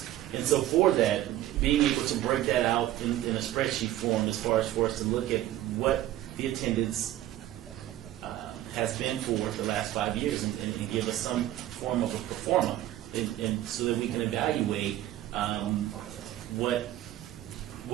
And so for that, being able to break that out in a spreadsheet form, as far as for us to look at what the attendance has been for the last 5 years, and give us some form of a pro forma, and so that we can evaluate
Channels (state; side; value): quieter; left; 13.9 dB